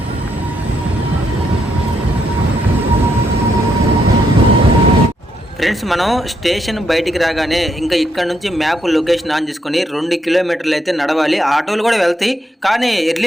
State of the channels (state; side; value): normal; both; correlation 0.77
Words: ఫ్రెండ్స్, మనం స్టేషన్ బయటికి రాగానే ఇంకా ఇక్కడ నుంచి మ్యాప్ లొకేషన్ ఆన్ చేసుకొని 2 కిలోమీటర్లు అయితే నడవాలి. ఆటోలు కూడా వెళ్తాయి, కానీ